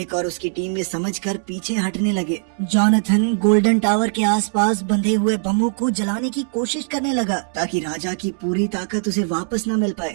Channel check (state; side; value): silent; left; 65 dB below the other